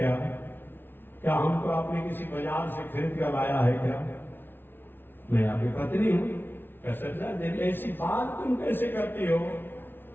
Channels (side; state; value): right; late; 0.10 ms